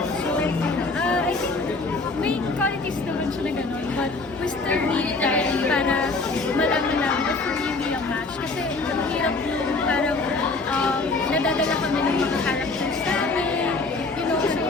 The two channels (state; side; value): quieter; right; 3.5 dB